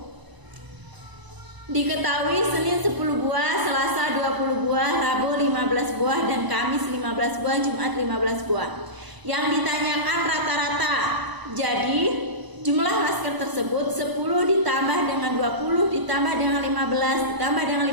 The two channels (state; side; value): late; left; 1.0 ms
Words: Diketahui Senin 10 buah, Selasa 20 buah, Rabu 15 buah, dan Kamis 15 buah, Jumat 15 buah. Yang ditanyakan rata-rata. Jadi jumlah masker tersebut 10 ditambah dengan 20 ditambah dengan 15 ditambah dengan